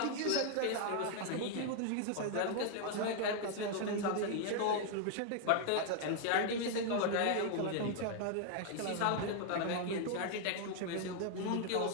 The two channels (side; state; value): both; different; correlation 0.00